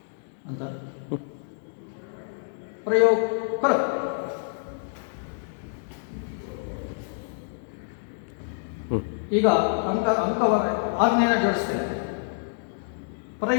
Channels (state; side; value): silent; right; digital silence